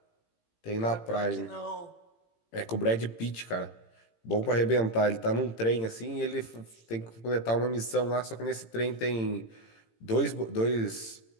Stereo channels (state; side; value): late; right; 18 ms